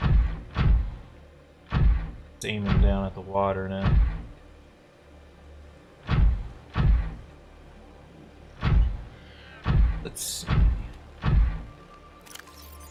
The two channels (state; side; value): identical; both; correlation 1.00